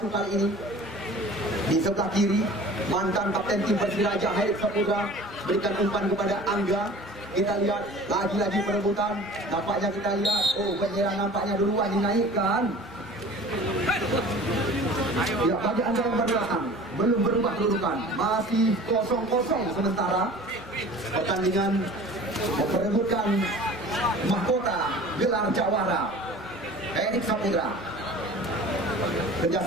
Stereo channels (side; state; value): both; normal; correlation 0.43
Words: kali ini. Di sebelah kiri, mantan kapten tim Persiraja Herik Saputra berikan umpan kepada Angga. Kita lihat lagi-lagi perebutan. Nampaknya kita lihat, penyerang nampaknya duluan dinaikkan. Ya, bagi Anda yang berbelakang, belum berubah kedudukan, masih 0-0 sementara. Pertandingan memperebutkan mahkota gelar jawara Herik Saputra.